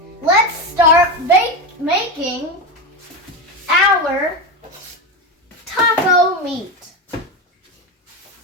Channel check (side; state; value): both; normal; correlation 0.17